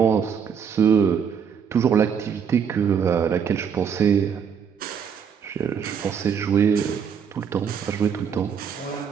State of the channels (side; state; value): left; quieter; 7.2 dB